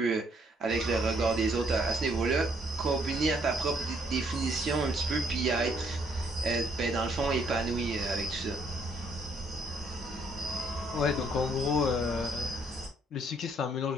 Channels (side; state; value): both; normal; correlation 0.68